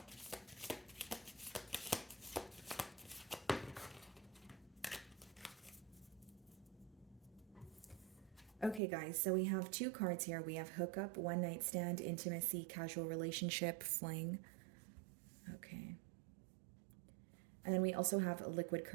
Okay, guys, so we have two cards here. We have hookup, one night stand, intimacy, casual relationship, fling. Okay. And then we also have liquid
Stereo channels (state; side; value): drops out; left; at 8.8 s